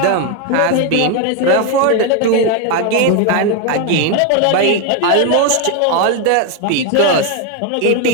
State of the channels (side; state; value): both; different; correlation 0.01